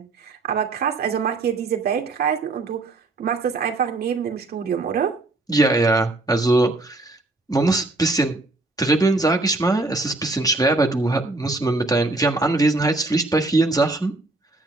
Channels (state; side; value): quieter; left; 3.0 dB